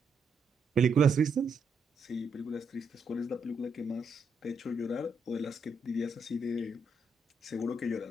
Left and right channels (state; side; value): quieter; left; 3.1 dB